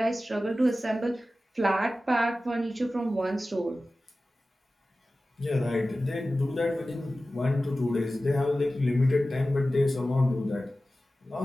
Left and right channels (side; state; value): both; normal; correlation 0.95